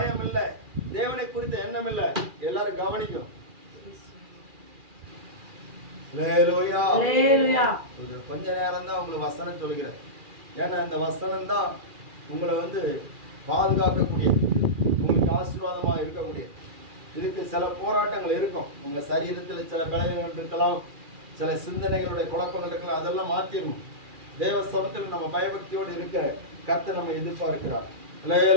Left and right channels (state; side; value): late; left; 2.4 ms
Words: இல்லை, தேவனை குறித்த எண்ணம் இல்லை. எல்லாரும் கவனிக்கும். கொஞ்ச நேரம் தான் உங்களுக்கு வசனம் சொல்லுகிறேன். ஏன்னா இந்த வசனம் தான் உங்களை பாதுகாக்கக்கூடிய, உங்களுக்கு ஆசீர்வாதமா இருக்கக்கூடிய. இதுக்கு சில போராட்டங்கள் இருக்கும். உங்க சரீரத்தில் சில பலவீனங்கள் இருக்கலாம், சில சிந்தனைகளுடைய குழப்பங்கள் இருக்கலாம். அதெல்லாம் மாத்திரணும். தேவ சமத்தில் நம்ம பயபக்தியோடு இருக்க கர்த்தர் நம்ம எதிர்பார்க்கிறார்.